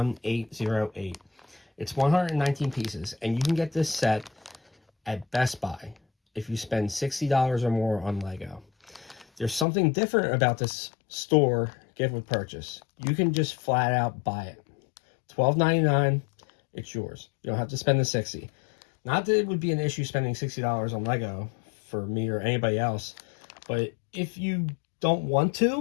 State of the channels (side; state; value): right; drops out; at 9.7 s